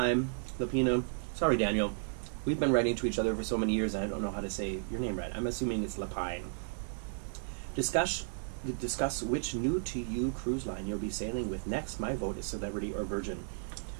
Sorry, Daniel. We've been writing to each other for so many years, and I don't know how to say your name right. I'm assuming it's Lapine. Discuss which new-to-you cruise line you'll be sailing with next. My vote is Celebrity or Virgin.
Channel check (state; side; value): silent; left; digital silence